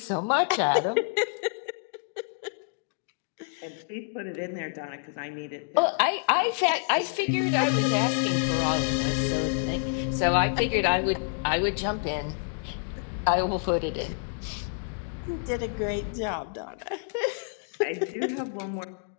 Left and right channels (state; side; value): silent; right; digital silence